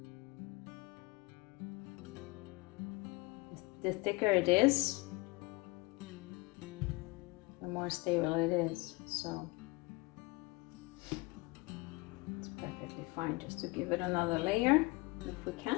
The thicker it is, the more stable it is, so it's perfectly fine just to give it another layer if we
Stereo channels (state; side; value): quieter; right; 24.7 dB